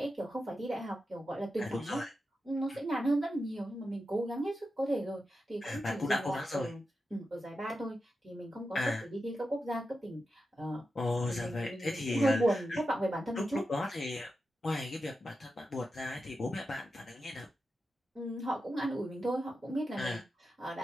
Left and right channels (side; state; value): both; normal; correlation 0.90